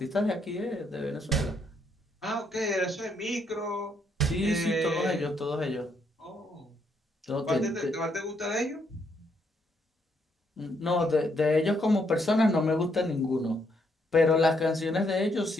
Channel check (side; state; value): both; normal; correlation 0.74